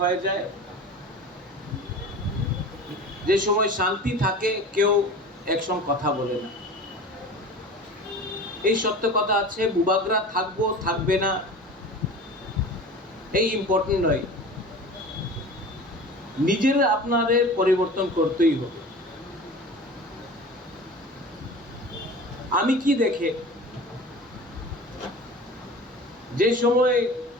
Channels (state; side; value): normal; both; correlation 0.36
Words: হয়ে যায়। যে সময় শান্তি থাকে কেউ একসঙ্গে কথা বলে না। এই সত্য কথা আছে, বুবাগরা থাকবো থাকবে না এই ইম্পর্টেন্ট নয়। নিজেরা আপনাদের পরিবর্তন করতেই হবে। আমি কি দেখে যে সময়